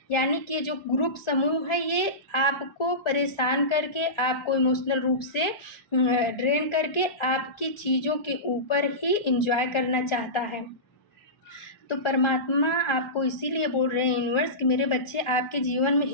यानी कि जो ग्रुप समूह है, ये आपको परेशान करके, आपको इमोशनल रूप से ड्रेन करके आपकी चीज़ों के ऊपर ही एंजॉय करना चाहता है। तो परमात्मा आपको इसीलिए बोल रहे हैं यूनिवर्स कि मेरे बच्चे, आपके जीवन में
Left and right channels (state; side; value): late; right; 1.4 ms